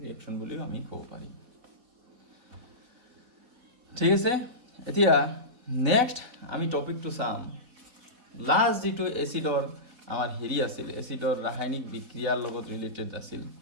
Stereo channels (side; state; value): left; late; 4.3 ms